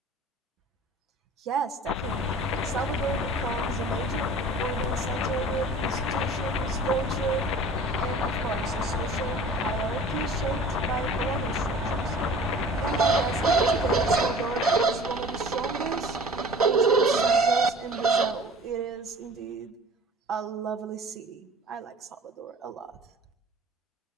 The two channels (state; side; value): normal; both; correlation 0.44